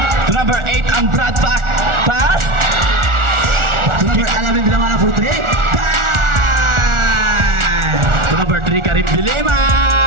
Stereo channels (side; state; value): left; late; 1.4 ms